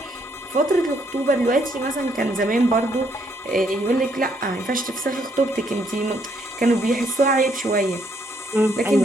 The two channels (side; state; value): both; normal; correlation 0.71